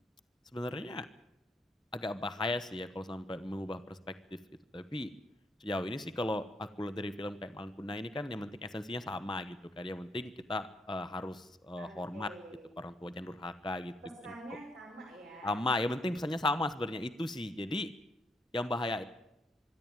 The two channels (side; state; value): both; normal; correlation 0.74